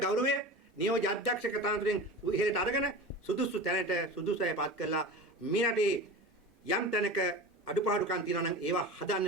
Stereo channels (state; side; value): normal; both; correlation 0.32